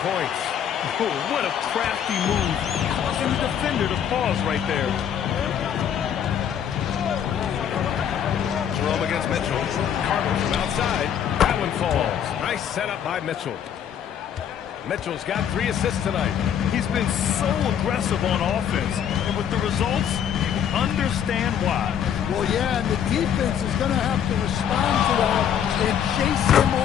points. Oh, what a crafty move. Causing the defender to pause right there. Jerome against Mitchell. Carter from outside. That one falls. Nice setup by Mitchell. Mitchell's got 3 assists tonight. He's been so aggressive on offense. And with the results, you understand why. Well, yeah, and the defense is going to have to respond to that and chase him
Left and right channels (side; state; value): right; quieter; 8.9 dB